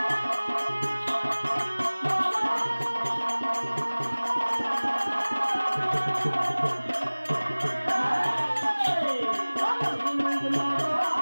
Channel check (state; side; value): inverted; both; correlation -1.00